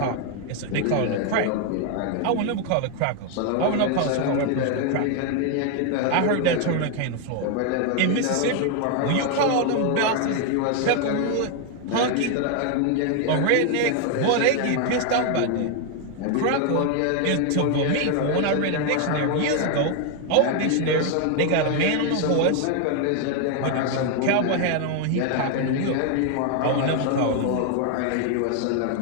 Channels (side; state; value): both; different; correlation 0.01